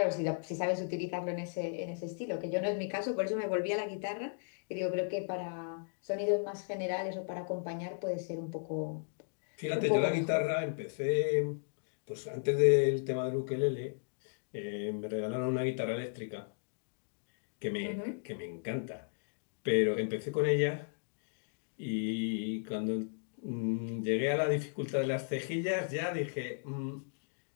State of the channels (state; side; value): silent; right; digital silence